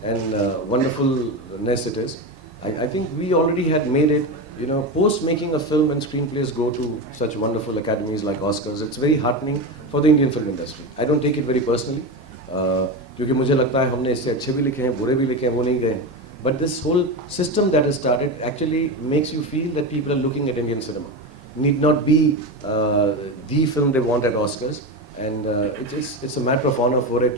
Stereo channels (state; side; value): normal; both; correlation 0.19